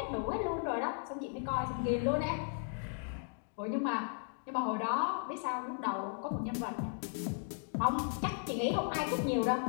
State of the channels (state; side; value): silent; right; 54 dB below the other